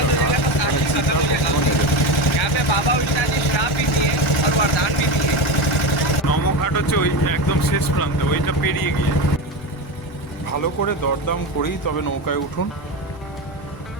ঘাট, এখানে চিতা কখনো নেবে না। নমঘাট হচ্ছে ওই একদম শেষ প্রান্তে, ওইটা পেরিয়ে গিয়ে। ভালো করে দরদাম করেই তবে নৌকায় উঠুন।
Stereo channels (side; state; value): both; normal; correlation 0.20